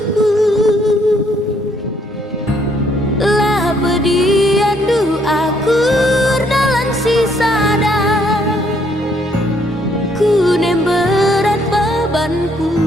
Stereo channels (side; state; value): both; normal; correlation 0.68